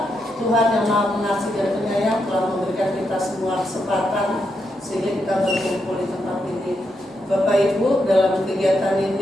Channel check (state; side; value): normal; both; correlation 0.82